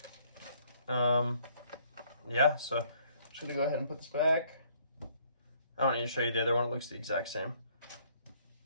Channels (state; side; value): inverted; both; correlation -0.63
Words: So I'm just gonna go ahead and put this back. I don't need to show you the other one. It looks the exact same.